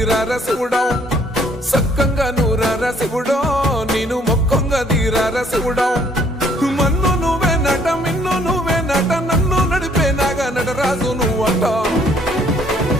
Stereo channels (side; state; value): both; normal; correlation 0.63